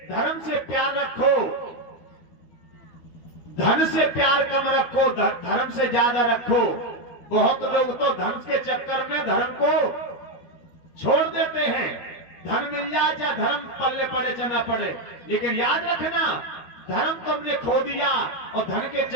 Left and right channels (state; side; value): late; right; 12 ms